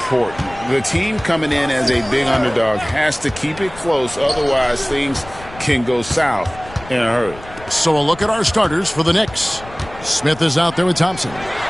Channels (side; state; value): left; noise; rumble, 18 dB below the sound